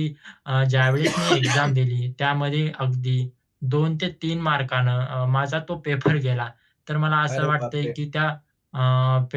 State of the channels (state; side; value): identical; both; correlation 1.00